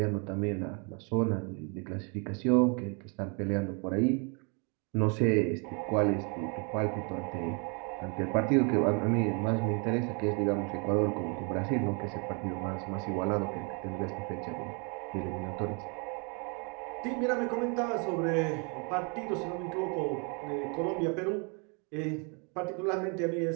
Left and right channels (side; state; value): left; quieter; 35.0 dB